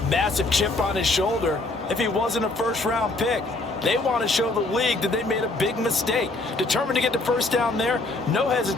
massive chip on his shoulder if he wasn't a first-round pick. They want to show the league that they made a big mistake. Determined to get the first down there, no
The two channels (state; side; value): quieter; right; 3.0 dB